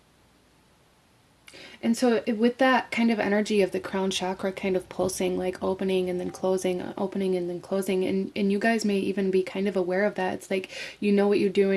And so with that kind of energy of the crown chakra kind of pulsing, like opening and then closing, opening and then closing, and you guys may even be kind of aware of that. It's like, you know what you're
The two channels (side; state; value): both; identical; correlation 1.00